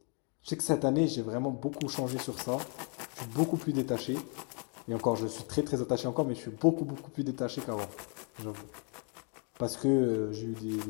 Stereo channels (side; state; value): right; quieter; 38.0 dB